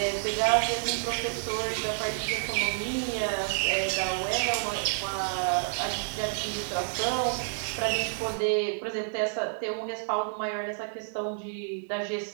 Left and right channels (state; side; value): silent; left; digital silence